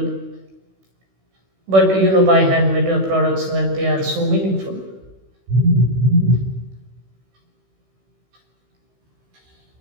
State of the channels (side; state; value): left; late; 16 ms